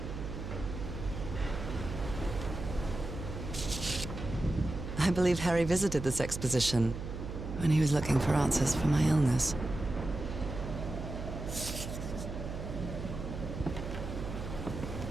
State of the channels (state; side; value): noise; right; hum, 7 dB below the sound